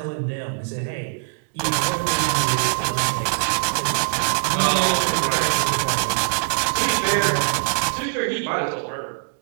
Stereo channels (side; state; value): left; silent; digital silence